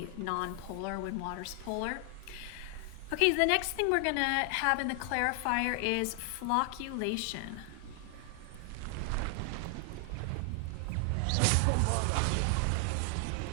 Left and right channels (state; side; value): different; both; correlation 0.00